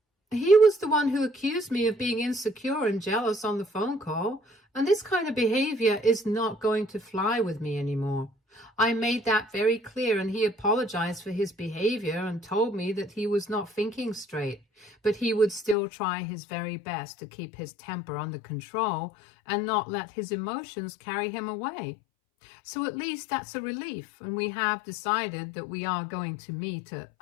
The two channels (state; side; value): drops out; right; at 15.8 s